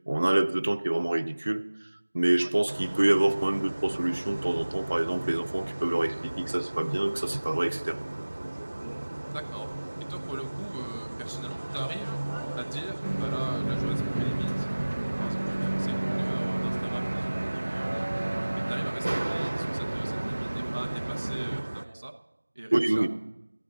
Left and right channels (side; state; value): both; inverted; correlation -1.00